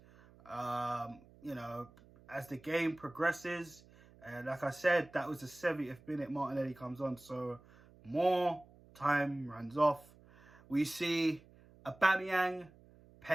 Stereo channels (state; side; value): noise; right; hum, 25 dB below the sound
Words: You know, as the game progresses, and like I said, that was the 70th minute Martinelli comes on, so more time runs off. We see Aubameyang,